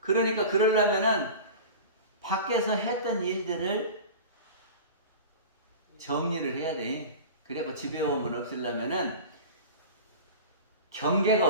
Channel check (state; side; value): inverted; both; correlation -0.34